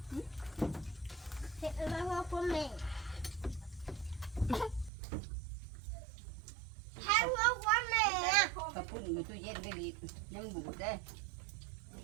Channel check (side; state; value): left; drops out; at 4.9 s